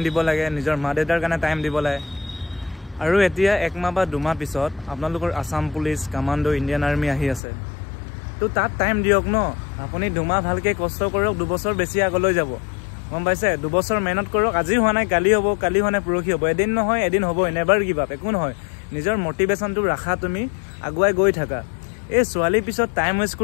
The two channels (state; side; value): drops out; right; at 7.4 s